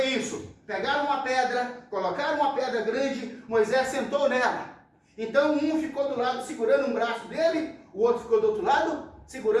isso. Pegaram uma pedra, colocaram uma pedra grande, Moisés sentou nela. Então um ficou do lado segurando um braço dele, o outro ficou do outro lado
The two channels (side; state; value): both; identical; correlation 1.00